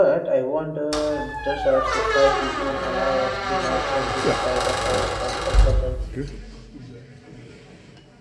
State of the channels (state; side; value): identical; both; correlation 1.00